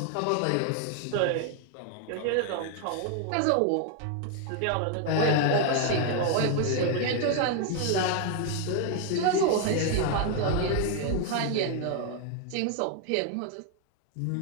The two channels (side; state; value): both; different; correlation 0.00